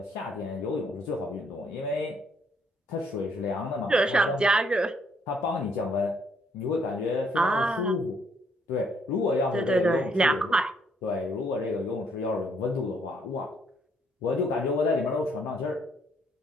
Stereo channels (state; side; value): normal; both; correlation 0.69